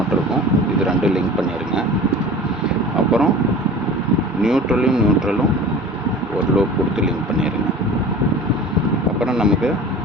இருக்கும். இது ரெண்டும் லிங்க் பண்ணிடுங்க. அப்புறம் நியூட்ரலும் ஒரு லோப் கொடுத்து லிங்க் பண்ணிடுங்க. அப்புறம் நமக்கு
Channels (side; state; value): both; normal; correlation 0.39